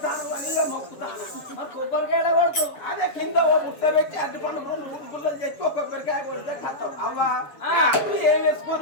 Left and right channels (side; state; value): right; late; 6.7 ms